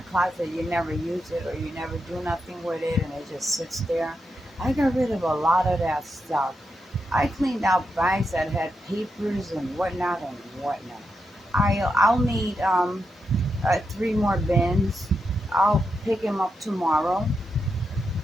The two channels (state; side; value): normal; both; correlation 0.85